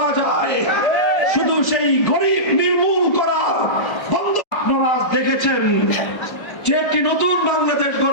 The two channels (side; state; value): right; late; 1.3 ms